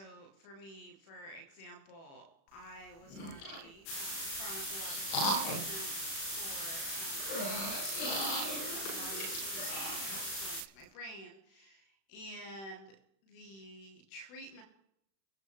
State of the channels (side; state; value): right; late; 36 ms